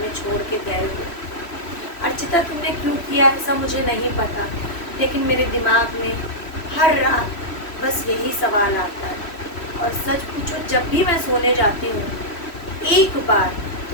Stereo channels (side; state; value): right; late; 3.1 ms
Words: छोड़ के गए हुए। अर्चिता, तुमने क्यों किया ऐसा मुझे नहीं पता, लेकिन मेरे दिमाग में हर रात बस यही सवाल आता है। और सच पूछो, जब भी मैं सोने जाती हूँ एक बार